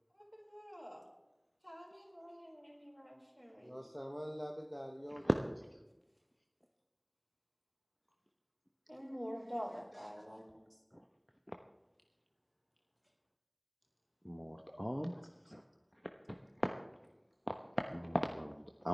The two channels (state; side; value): identical; both; correlation 1.00